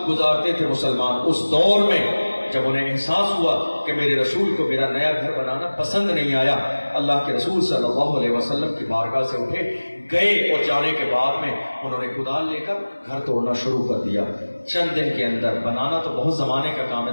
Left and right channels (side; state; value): both; inverted; correlation -1.00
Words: گزارتے تھے مسلمان۔ اس دور میں جب انہیں احساس ہوا کہ میرے رسول کو میرا نیا گھر بنانا پسند نہیں آیا، اللہ کے رسول صلی اللہ علیہ وسلم کی بارگاہ سے اٹھے گئے اور جانے کے بعد میں انہوں نے کدال لے کر گھر توڑنا شروع کر دیا۔ چند دن کے اندر، بنانا تو بہت زمانے کا کام ہے،